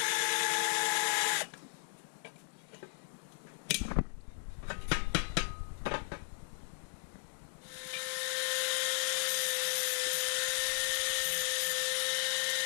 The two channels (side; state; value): right; silent; digital silence